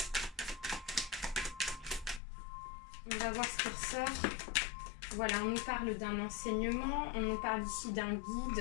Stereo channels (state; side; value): drops out; right; at 2.2 s